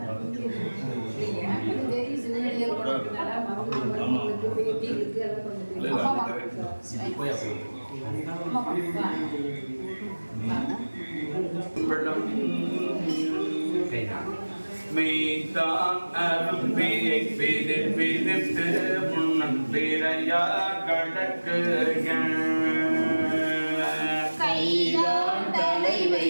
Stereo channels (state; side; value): inverted; both; correlation -1.00